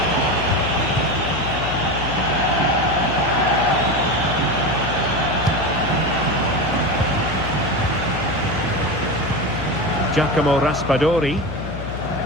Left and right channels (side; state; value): left; noise; hum, 9 dB below the sound